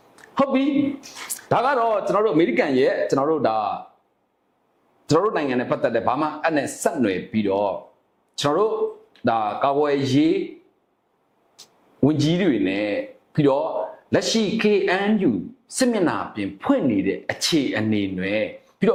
ဟုတ်ပြီဒါကတော့ကျွန်တော်တို့အမေရိကန်ရဲ့ကျွန်တော်တို့နိုင်ငံနဲ့ပတ်သက်တဲ့ဘာမှအဲ့နဲ့ဆက်နွယ်ပြီးတော့ကျွန်တော်တို့ဒါကာကွယ်ရေးဝန်ကြီးတွေနဲ့ပြီးတော့လက်ရှိ KNU စစ်မျက်နှာပြင်ဖွင့်နေတဲ့အခြေအနေတွေပြီးတေ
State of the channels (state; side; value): identical; both; correlation 1.00